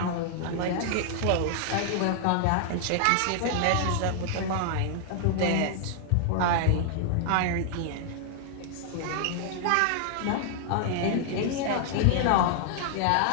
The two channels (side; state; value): both; different; correlation 0.00